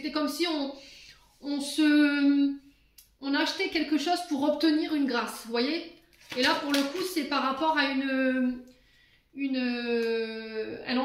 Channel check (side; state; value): both; identical; correlation 1.00